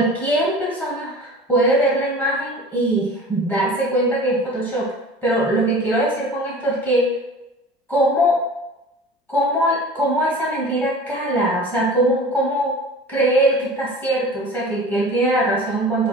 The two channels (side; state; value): both; normal; correlation 0.40